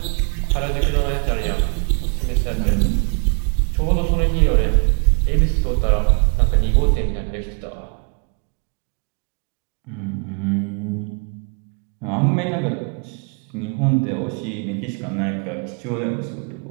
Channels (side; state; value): left; quieter; 39.0 dB